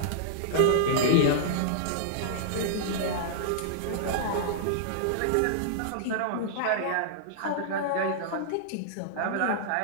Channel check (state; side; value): different; both; correlation -0.02